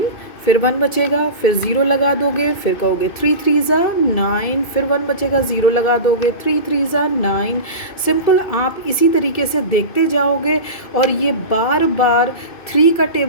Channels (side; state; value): right; late; 2.6 ms